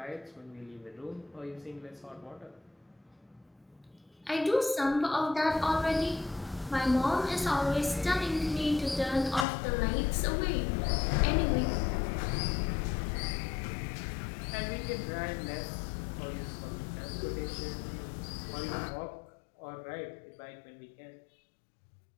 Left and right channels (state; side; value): drops out; right; at 9.5 s